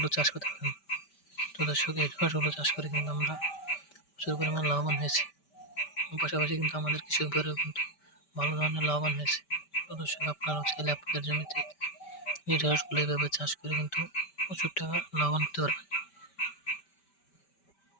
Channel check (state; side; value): late; right; 5.1 ms